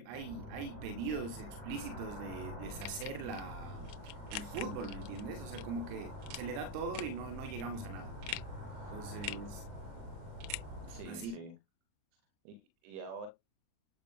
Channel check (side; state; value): left; late; 39 ms